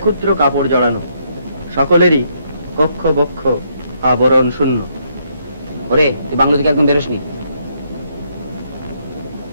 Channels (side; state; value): both; inverted; correlation -0.73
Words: ক্ষুদ্র কাপড় জড়ানো, সকলেরই কক্ষ বক্ষ আবরণ শূন্য। ওরে তুই বাংলা থেকে একদম বেরোসনি।